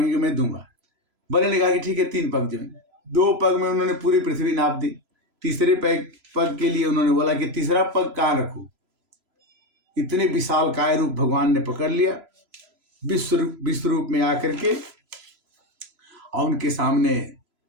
मैं दूंगा। बलि ने कहा कि ठीक है, 3 पग जमीन। 2 पग में उन्होंने पूरी पृथ्वी नाप दी। तीसरे पग के लिए उन्होंने बोला कि तीसरा पग कहाँ रखूं। इतने विशाल काय रूप भगवान ने पकड़ लिया, विश्व रूप में आकर के और उनके सामने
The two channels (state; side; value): late; left; 3.0 ms